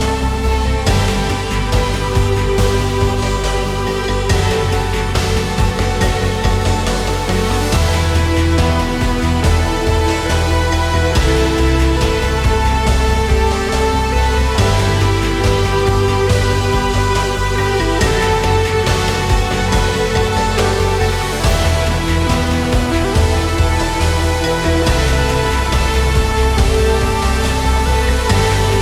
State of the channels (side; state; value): both; identical; correlation 1.00